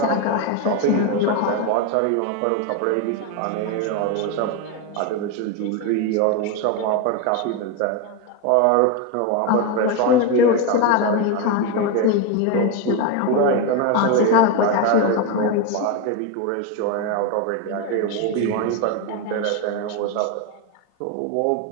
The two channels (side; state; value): both; different; correlation 0.03